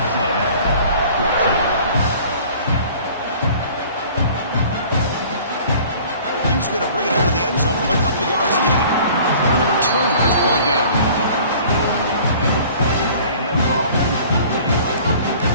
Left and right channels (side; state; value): both; inverted; correlation -0.49